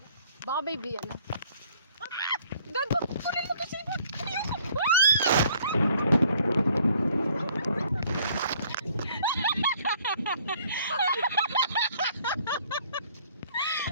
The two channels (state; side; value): inverted; both; correlation -0.60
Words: Baka baby, ano? Gago! Kunin mo kasi mo!